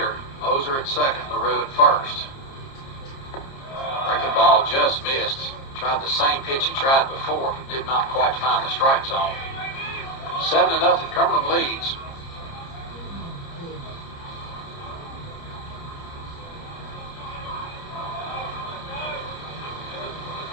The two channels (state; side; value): late; right; 30 ms